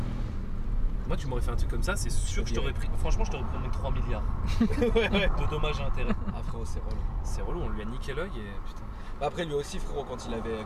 Moi, tu m'aurais fait un truc comme ça, c'est sûr que je t'aurais pris. Franchement, je t'aurais pris 3 milliards de dommages et intérêts. Ah frérot, c'est relou. C'est relou, on lui a niqué l'œil et putain. Bah, après lui aussi frérot, quand il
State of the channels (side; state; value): both; identical; correlation 1.00